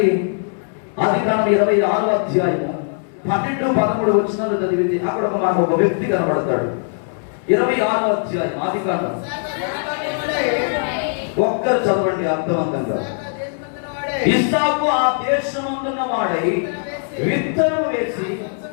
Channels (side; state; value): right; silent; 66 dB below the other